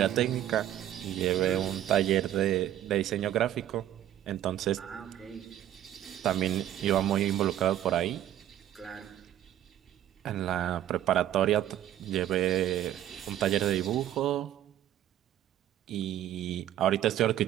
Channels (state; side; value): quieter; left; 12.0 dB